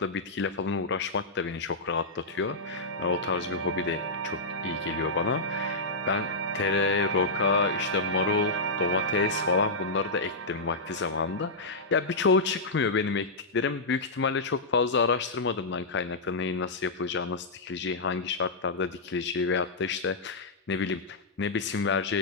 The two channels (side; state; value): right; quieter; 3.0 dB